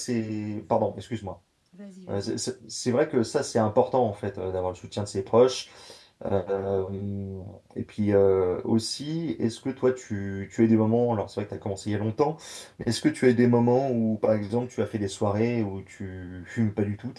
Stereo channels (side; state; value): both; identical; correlation 1.00